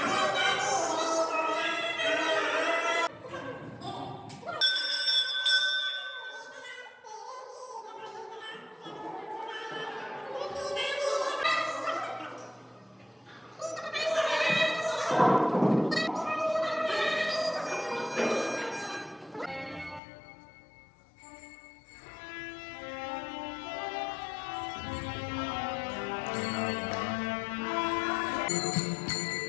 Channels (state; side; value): drops out; right; at 20.0 s